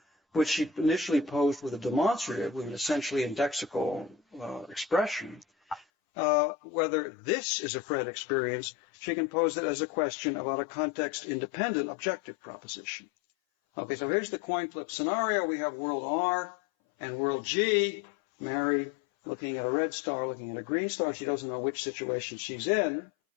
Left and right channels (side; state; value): right; drops out; at 5.9 s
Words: which she initially posed with a demonstrative, with an essentially indexical expression. Whether this is a Fred experience, she can pose it as a question about a context-independent objective proposition. Okay, so here's the coin flip scenario. We have world R and world G. Mary looking at a red star, looking at a green star. She doesn't know which situation she's in.